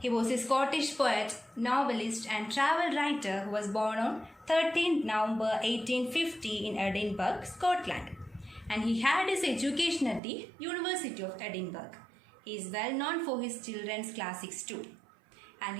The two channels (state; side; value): drops out; left; at 10.2 s